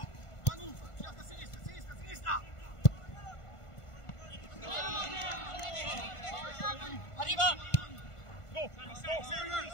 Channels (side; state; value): right; late; 1.5 ms